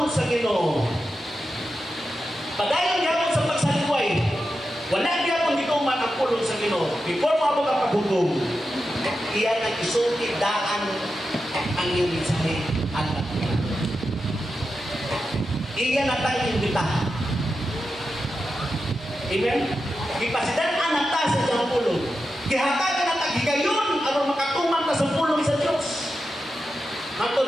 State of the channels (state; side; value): normal; both; correlation 0.90